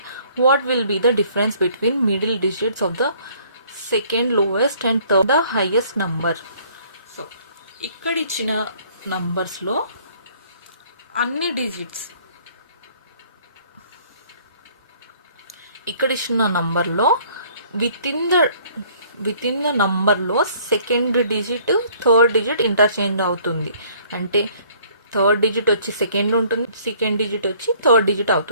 what will be the difference between middle digits of the second lowest and third the highest number? So ఇక్కడ ఇచ్చిన నంబర్స్లో అన్ని డిజిట్స్, ఇక్కడ ఇచ్చిన నంబర్లో విత్ ఇన్ ద నంబర్లో second digit third digit interchange అవుతుంది. అంటే థర్డ్ డిజిట్ వచ్చి సెకండ్ ఉంటుంది, సెకండ్ డిజిట్ వచ్చి థర్డ్ డిజిట్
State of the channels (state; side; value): inverted; both; correlation -0.58